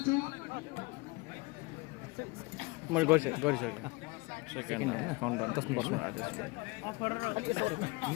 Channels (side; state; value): right; quieter; 25.1 dB